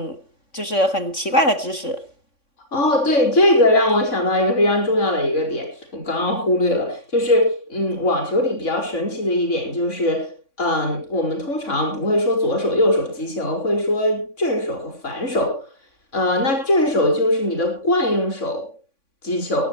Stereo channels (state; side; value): late; right; 3.6 ms